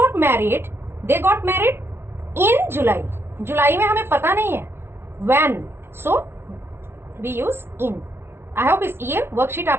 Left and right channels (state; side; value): late; left; 0.12 ms